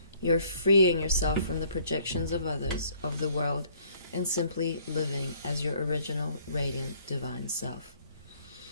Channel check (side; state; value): both; inverted; correlation -0.60